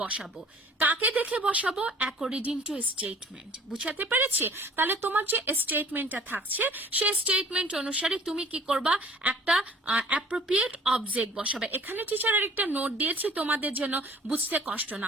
বসাবো। কাকে দেখে বসাবো? According to statement. বুঝাতে পেরেছি? তাহলে তোমার যে স্টেটমেন্টটা থাকছে সেই স্টেটমেন্ট অনুসারে তুমি কি করবা, একটা অ্যাপ্রোপ্রিয়েট অবজেক্ট বসাবে। এখানে টিচার আরেকটা নোট দিয়েছি তোমাদের জন্য বুঝতে কষ্ট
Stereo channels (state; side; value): normal; both; correlation 0.51